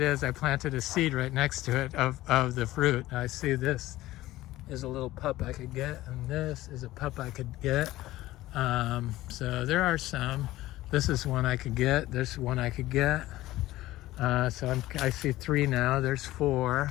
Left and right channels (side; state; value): right; quieter; 16.5 dB